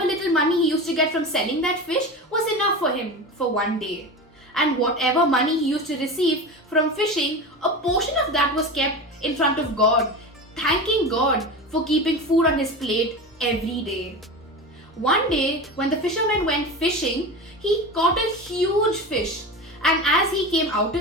money he used to get from selling that fish was enough for him for one day. And whatever money he used to receive from fishing, a portion of that was kept in front of God, thanking God for keeping food on his plate every day. One day, when the fisherman went fishing, he caught a huge fish, and as he came out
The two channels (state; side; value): normal; both; correlation 0.27